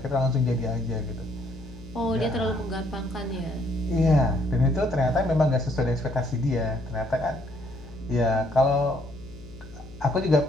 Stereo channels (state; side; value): noise; left; hum, 18 dB below the sound